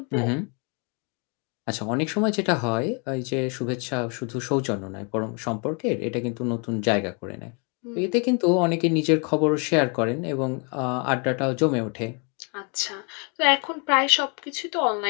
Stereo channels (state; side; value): quieter; right; 35.4 dB